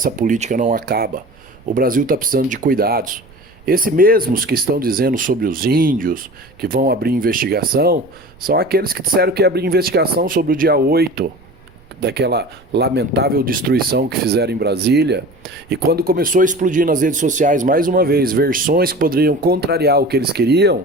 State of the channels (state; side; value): noise; right; rumble, 27 dB below the sound